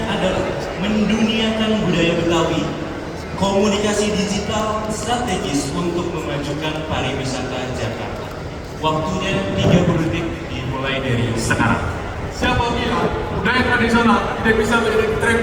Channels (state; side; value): identical; both; correlation 1.00